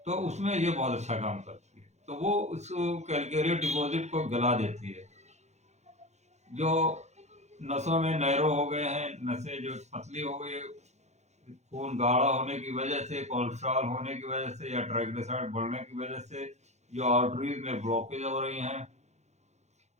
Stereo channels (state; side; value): late; left; 0.33 ms